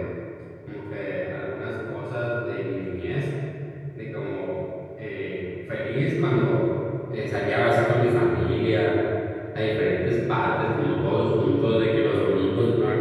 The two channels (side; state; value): both; identical; correlation 1.00